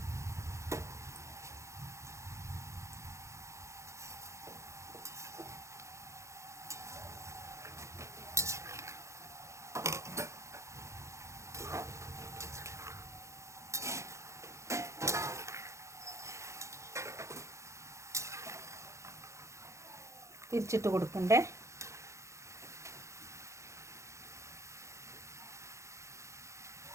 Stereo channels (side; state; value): left; late; 0.14 ms